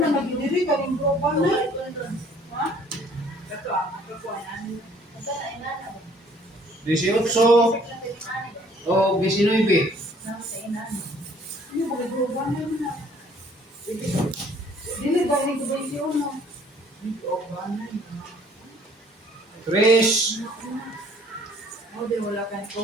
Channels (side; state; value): both; normal; correlation 0.58